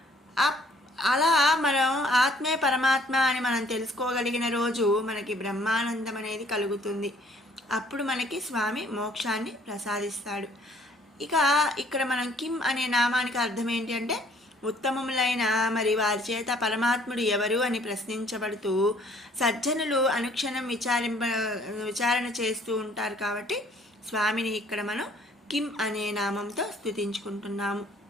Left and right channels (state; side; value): normal; both; correlation 0.59